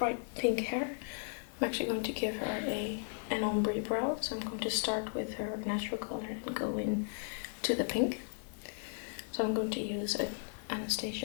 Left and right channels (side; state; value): right; silent; digital silence